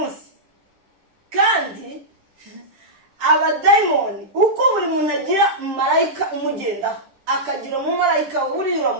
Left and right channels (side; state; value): left; late; 10 ms